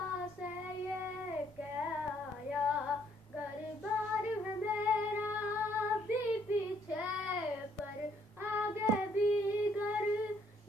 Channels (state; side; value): normal; both; correlation 0.67